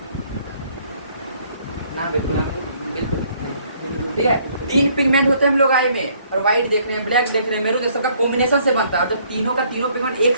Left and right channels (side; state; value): both; inverted; correlation -0.63